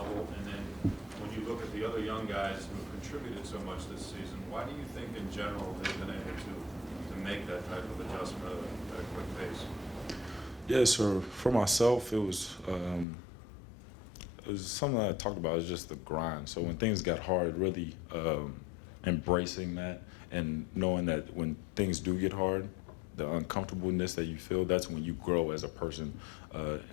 And then when you look at the other young guys who have contributed so much this season, why do you think in general they've been able to make that type of adjustment at a quick pace? Yeah, so for myself, it was something that I talked about. It's just the grind. So when things got hard, really embracing that and knowing that when things do get hard, the uncomfortableness that you feel, that's when you grow as a person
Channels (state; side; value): drops out; right; at 13.1 s